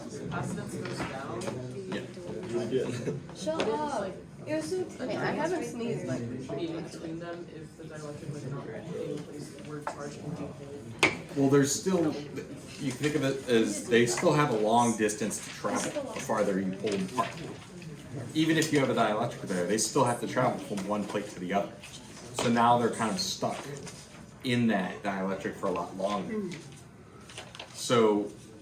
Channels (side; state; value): both; identical; correlation 1.00